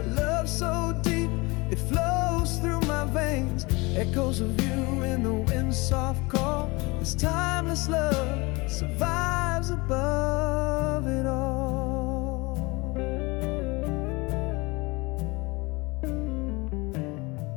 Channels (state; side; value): quieter; right; 25.1 dB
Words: love so deep, it flows through my veins. Echoes of you in the wind's soft call. This timeless love survives above it all.